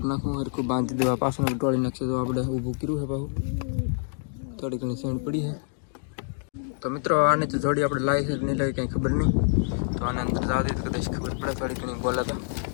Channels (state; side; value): silent; right; digital silence